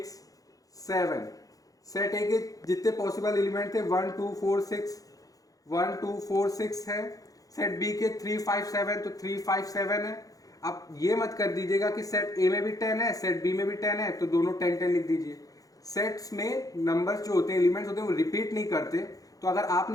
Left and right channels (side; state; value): right; late; 0.17 ms